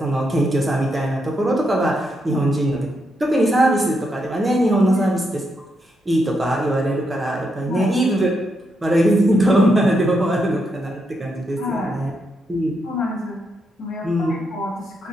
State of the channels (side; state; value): both; normal; correlation 0.81